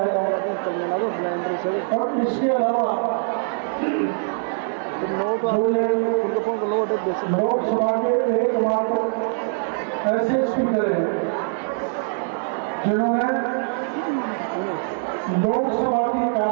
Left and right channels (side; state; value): left; silent; 60 dB below the other